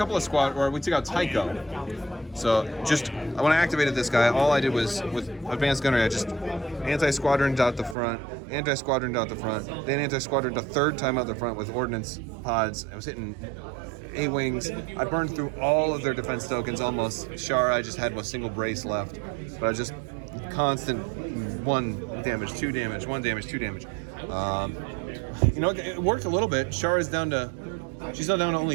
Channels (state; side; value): drops out; left; at 8.0 s